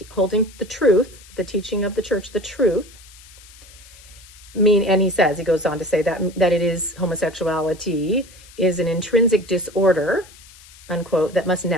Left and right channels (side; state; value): left; noise; hiss, 22 dB below the sound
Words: holding the truth, the teaching of the church, the truth. And he goes on to say that it is homosexuality is an intrinsic disorder, unquote, that must